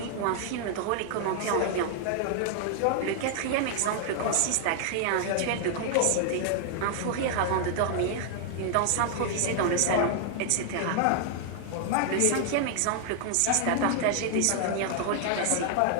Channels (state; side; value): different; both; correlation 0.00